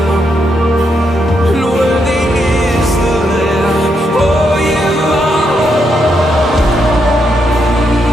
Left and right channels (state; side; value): normal; both; correlation 0.80